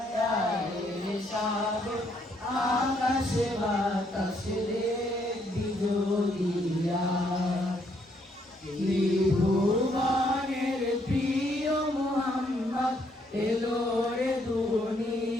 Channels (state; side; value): normal; both; correlation 0.71